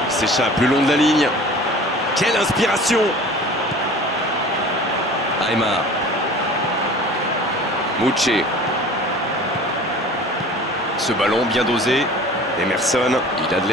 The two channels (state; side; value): normal; both; correlation 0.43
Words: S'échappe le long de la ligne. Quelle inspiration! Aymar. Mouché. Ce ballon bien dosé. Emerson, il a de